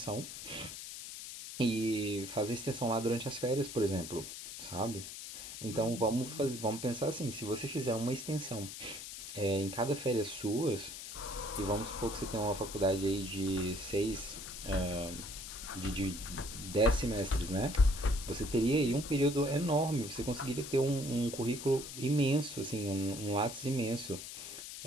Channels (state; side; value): noise; left; hiss, 9 dB below the sound